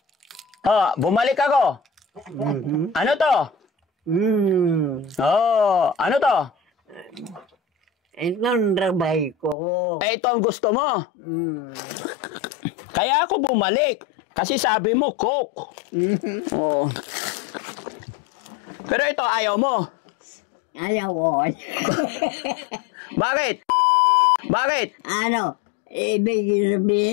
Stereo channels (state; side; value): drops out; right; at 9.6 s